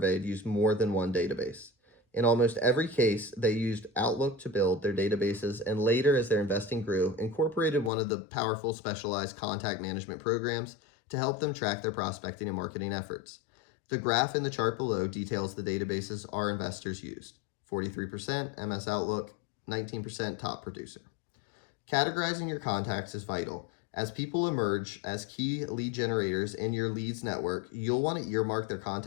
used more than one database. In almost every case, they used Outlook to build their databases and later, as their investing grew, incorporated one of the powerful specialized contact management programs to help them track their prospecting and marketing efforts. The graph in the chart below details the databases our investors used. 43% MS Outlook, 19% Top Producer. Categorizing your contacts is vital. As people emerge as key lead generators in your leads network, you'll want to earmark their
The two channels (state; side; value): drops out; right; at 7.9 s